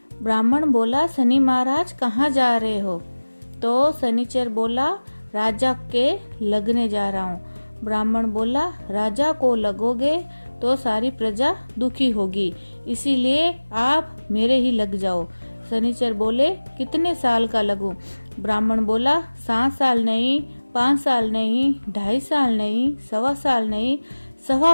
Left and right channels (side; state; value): both; inverted; correlation -1.00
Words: ब्राह्मण बोला, शनि महाराज कहाँ जा रहे हो? तो शनिचर बोला, राजा के लगने जा रहा हूँ। ब्राह्मण बोला, राजा को लगोगे तो सारी प्रजा दुखी होगी, इसीलिए आप मेरे ही लग जाओ। शनिचर बोले, कितने साल का लगूं? ब्राह्मण बोला, 7 साल नहीं, 5 साल नहीं, 2.5 साल नहीं, 1.25 साल नहीं,